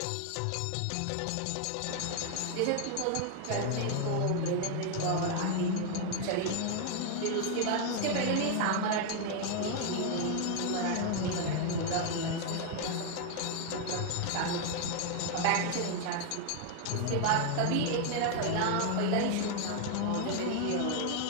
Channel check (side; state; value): both; different; correlation 0.00